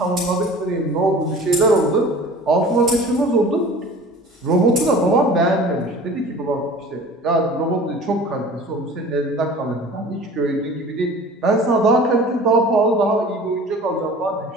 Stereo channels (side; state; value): both; normal; correlation 0.42